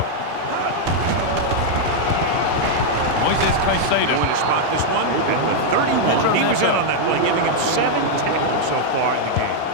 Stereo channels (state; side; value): different; both; correlation -0.01